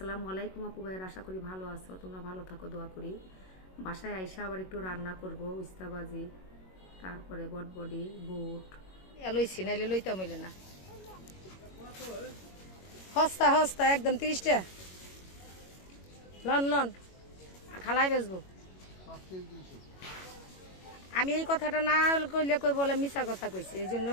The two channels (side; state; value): right; late; 21 ms